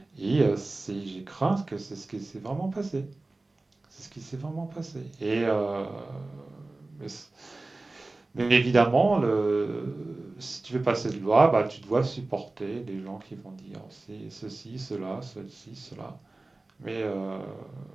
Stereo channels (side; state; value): left; quieter; 3.1 dB